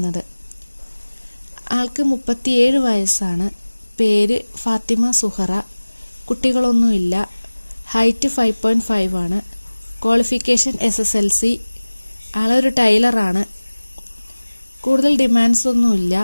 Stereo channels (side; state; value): both; inverted; correlation -1.00